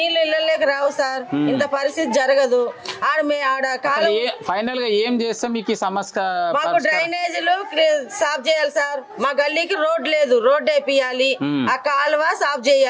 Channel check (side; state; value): both; identical; correlation 1.00